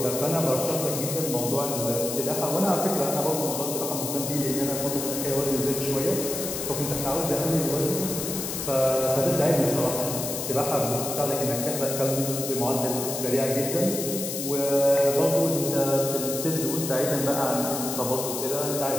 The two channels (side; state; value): left; noise; hiss, 5 dB below the sound